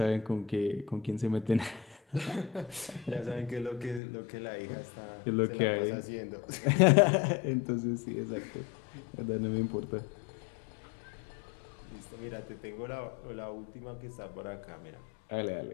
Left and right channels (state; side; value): drops out; right; at 4.0 s